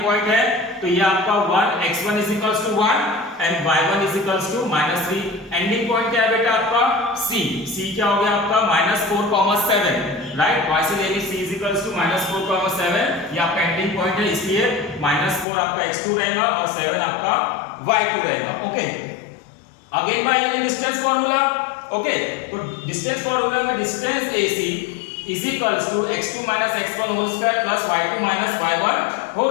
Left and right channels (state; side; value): drops out; right; at 15.5 s